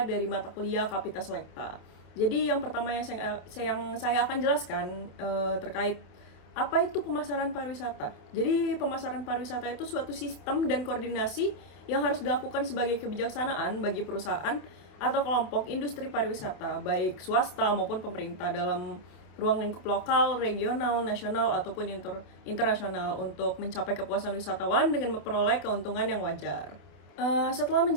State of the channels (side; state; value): right; late; 28 ms